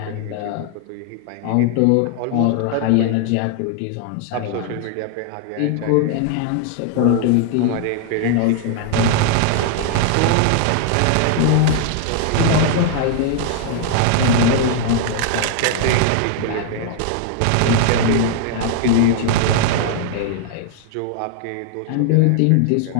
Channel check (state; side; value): different; both; correlation 0.00